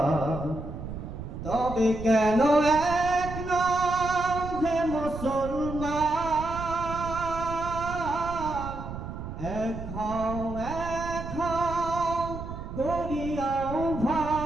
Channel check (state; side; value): noise; right; rumble, 9 dB below the sound